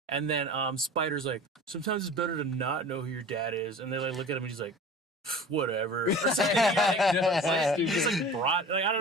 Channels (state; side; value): normal; both; correlation 0.40